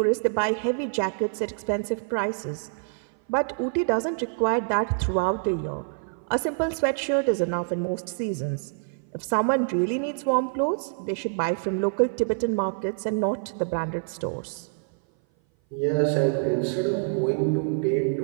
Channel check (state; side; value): silent; left; 57 dB below the other